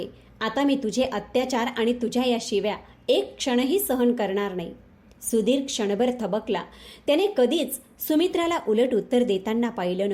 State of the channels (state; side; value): identical; both; correlation 1.00